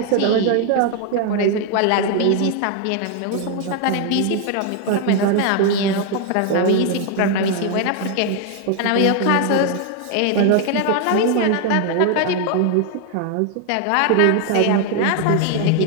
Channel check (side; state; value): both; different; correlation 0.00